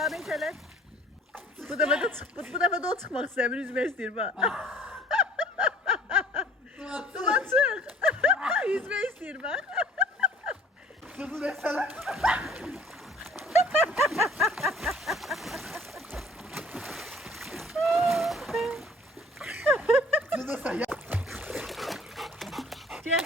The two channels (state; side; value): normal; both; correlation 0.53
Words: Bu defa da o çıkmak istemiyor. Üzmek istiyor bak. Duman çık. Yüzmek istiyor bak. Sırtı desene. Sırtı desene ya.